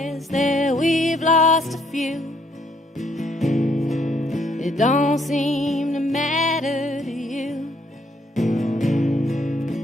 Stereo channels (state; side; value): normal; both; correlation 0.69